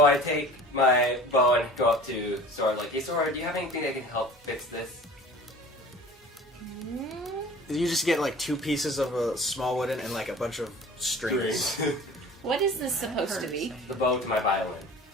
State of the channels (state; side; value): normal; both; correlation 0.43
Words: I take my bow and go up to Sora, like, hey Sora, do you have anything that can help fix this? You just get like 2 pieces of a small wooden and like a bunch of strings. What is this supposed to be? The bow to my violin.